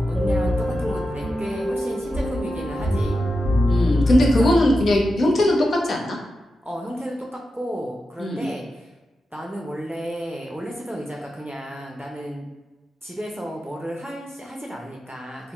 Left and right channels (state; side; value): normal; both; correlation 0.90